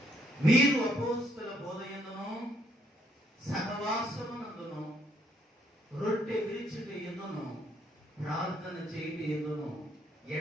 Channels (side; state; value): both; normal; correlation 0.70